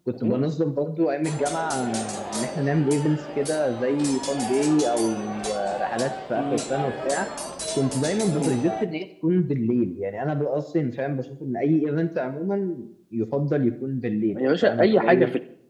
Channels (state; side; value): identical; both; correlation 1.00